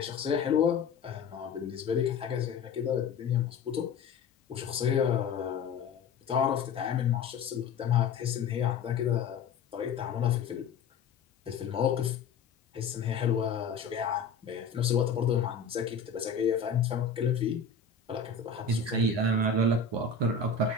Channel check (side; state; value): right; quieter; 5.2 dB